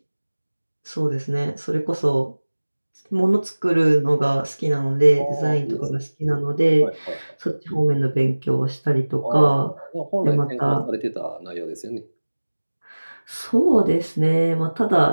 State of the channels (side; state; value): both; inverted; correlation -1.00